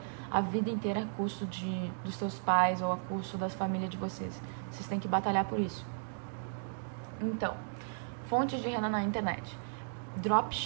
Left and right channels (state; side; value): silent; left; digital silence